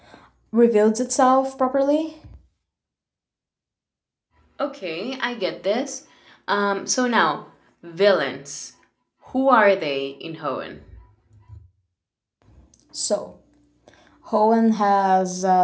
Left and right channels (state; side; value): identical; both; correlation 1.00